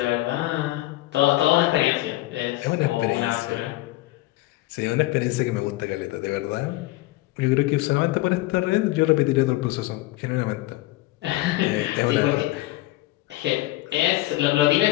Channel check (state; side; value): quieter; right; 18.0 dB